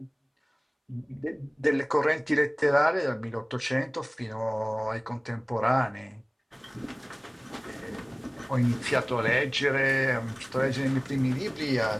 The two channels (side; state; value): both; identical; correlation 1.00